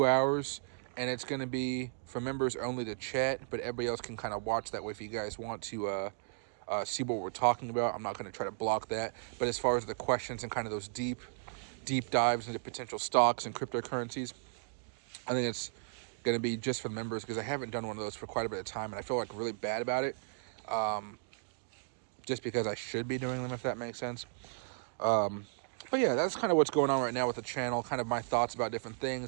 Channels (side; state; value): left; silent; digital silence